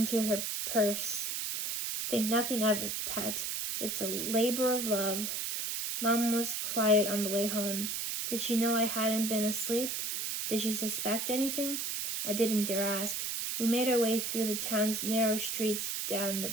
her purse. "Think nothing of it, pet. It's a labor of love." Mom was quiet on the way home. Did she know I hadn't been asleep? Did she suspect anything? I didn't dare ask. We made our way through the town's narrow streets down the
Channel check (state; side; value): noise; right; hiss, 2 dB below the sound